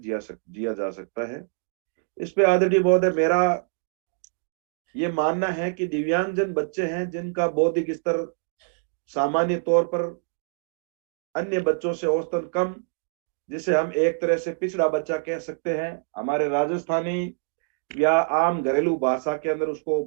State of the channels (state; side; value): silent; left; digital silence